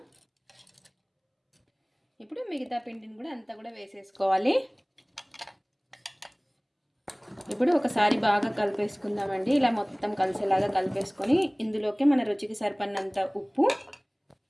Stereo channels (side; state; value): both; identical; correlation 1.00